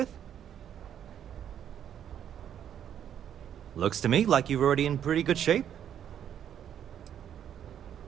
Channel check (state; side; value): quieter; left; 9.6 dB